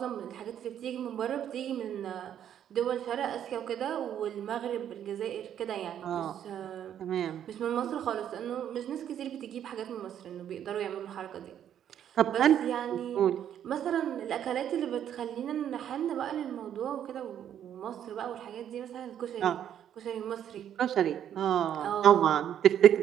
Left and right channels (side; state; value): left; quieter; 9.9 dB